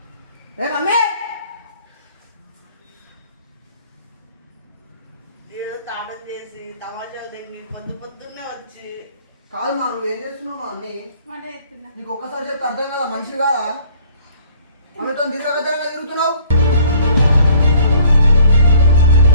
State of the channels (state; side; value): inverted; both; correlation -0.56